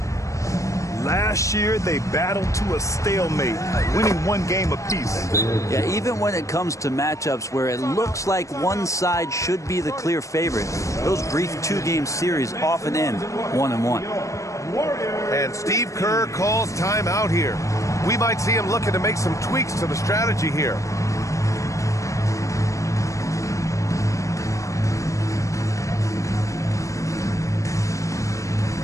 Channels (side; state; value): right; late; 0.15 ms